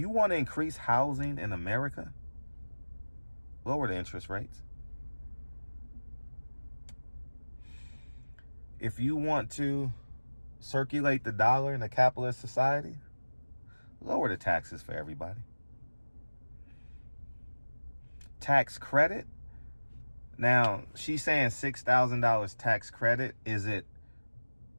want to increase housing in America, lower the interest rates. If you want to circulate the dollar in a capitalist society, lower the taxes for everybody. Tax credit. Now, she's saying $6,000 tax credit. Is it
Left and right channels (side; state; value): both; inverted; correlation -1.00